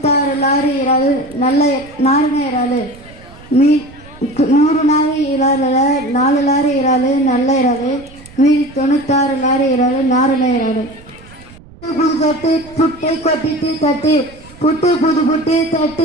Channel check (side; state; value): right; noise; rumble, 22 dB below the sound